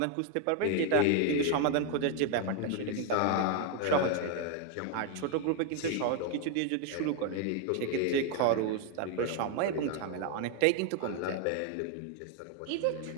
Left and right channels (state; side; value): different; both; correlation 0.01